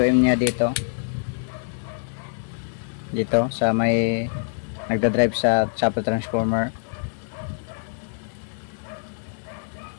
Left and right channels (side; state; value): right; silent; 62 dB below the other